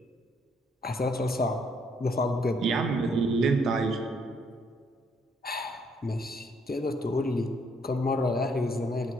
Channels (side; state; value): both; normal; correlation 0.69